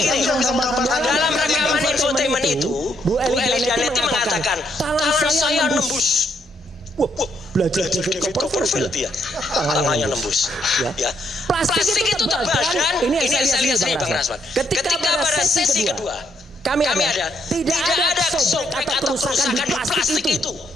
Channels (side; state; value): both; normal; correlation 0.74